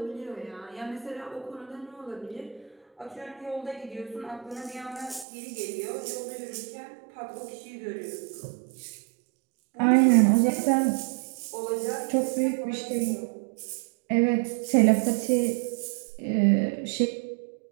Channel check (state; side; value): drops out; left; at 5.2 s